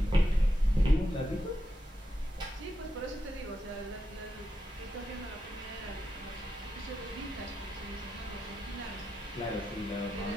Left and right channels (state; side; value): normal; both; correlation 0.86